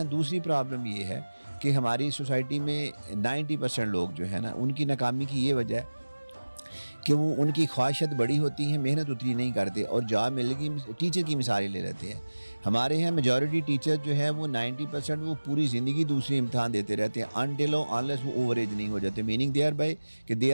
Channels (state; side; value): inverted; both; correlation -1.00